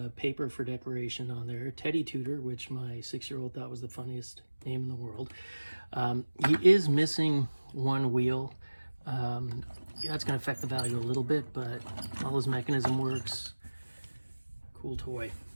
paper for decoration on there. Teddy Tudor, which my 6-year-old thought was the funniest name in the world. He is missing one wheel. That's going to affect the value a little bit, but all his mechanism works. Cool toy.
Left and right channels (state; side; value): inverted; both; correlation -1.00